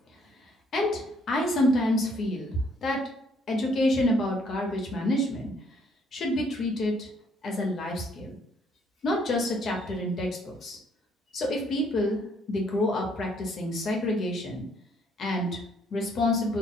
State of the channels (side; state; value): both; normal; correlation 0.66